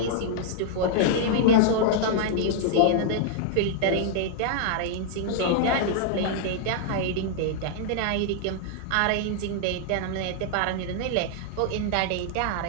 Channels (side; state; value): both; different; correlation -0.01